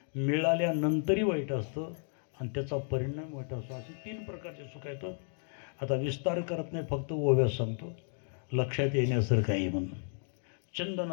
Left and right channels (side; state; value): right; silent; 56 dB below the other